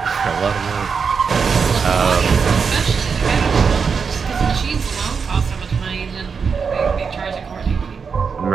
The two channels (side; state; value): left; quieter; 5.7 dB